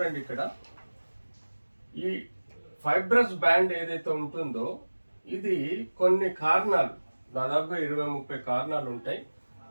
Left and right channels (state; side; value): inverted; both; correlation -1.00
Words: ఇక్కడ ఈ ఫైబ్రస్ బ్యాండ్ ఏదైతే ఉంటుందో ఇది కొన్ని కారణాలు, దాదాపుగా 20-30 కారణాలు ఉంటాయి.